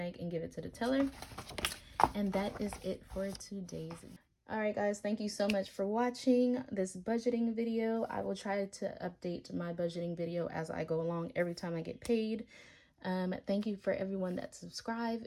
and give it to the teller. And that is it for today's. All right, guys, thank you so much for watching this budgeting video. I will try to update my budgeting video as I go along every time I get paid. Thank you for everyone that subscribed.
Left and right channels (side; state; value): both; identical; correlation 1.00